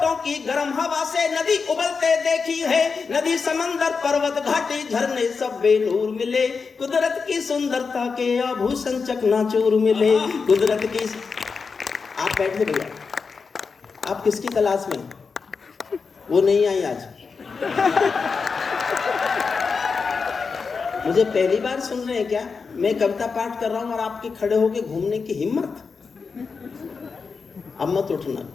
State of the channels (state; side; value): quieter; right; 5.0 dB